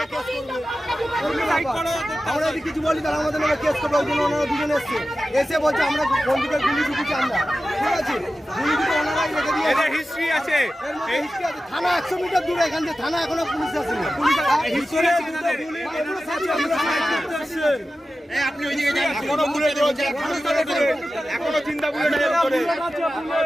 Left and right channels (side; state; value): both; normal; correlation 0.94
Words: আমরা যদি কিছু বলি তাহলে আমাদের নামে কেস করবে। ওই জন্য ওনারা দুজন এসছে, এসে বলছে আমরা বন্ধুকে গুলি ঢুকেছি আমরা, ঠিক আছে? গুলি ঢুকে ওনারাই রেখে দিয়ে হিস্ট্রি আছে। থানা 100 মিটার দূরে, এখান থেকে থানা এখনো পুলিশ আসেনি। আপনি ওইদিকে যান, এখনো বুলেট রয়েছে, এখনো চিন্তা বুলেট